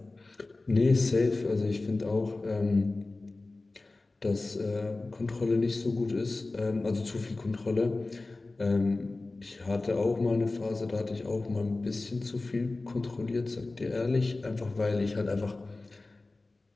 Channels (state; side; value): quieter; right; 3.2 dB